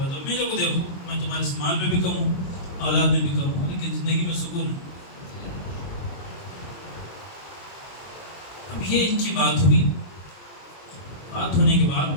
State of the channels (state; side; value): late; right; 22 ms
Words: میرے کو دیکھو میں تمہارے سے مال میں بھی کم ہوں، اولاد میں بھی کم ہوں، لیکن زندگی میں سکون ہے. اب یہ ان کی بات ہوئی. بات ہونے کے